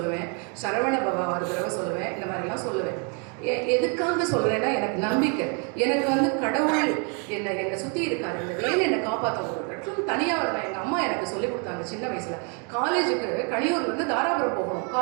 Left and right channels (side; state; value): left; quieter; 37.3 dB